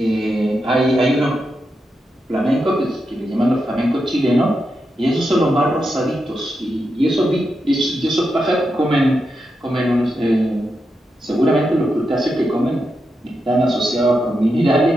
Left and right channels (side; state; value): both; normal; correlation 0.86